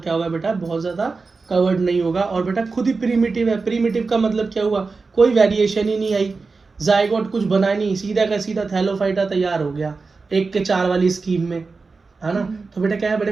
क्या होगा बेटा, बहुत ज़्यादा कवर्ड नहीं होगा। और बेटा खुद ही प्रीमिटिव है, प्रीमिटिव का मतलब क्या हुआ, कोई वेरिएशन ही नहीं आई, जाइगोट कुछ बना नहीं, सीधा का सीधा थैलोफाइटा तैयार हो गया 1 के 4 वाली स्कीम में, है ना। तो बेटा क्या है, बड़े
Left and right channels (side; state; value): left; quieter; 4.2 dB